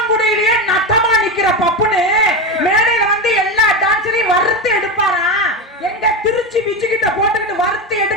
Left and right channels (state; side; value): normal; both; correlation 0.17